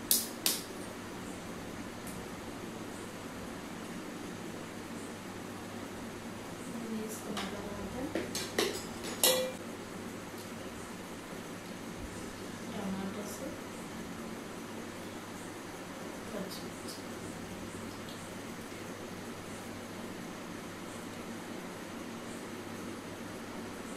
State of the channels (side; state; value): both; identical; correlation 1.00